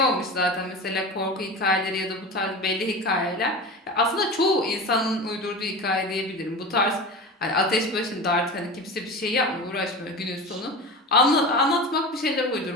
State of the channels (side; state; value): both; normal; correlation 0.30